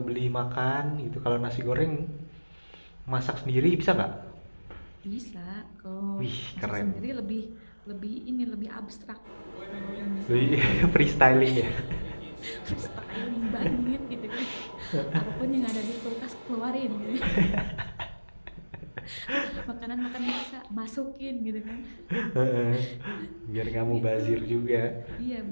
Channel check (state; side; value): inverted; both; correlation -1.00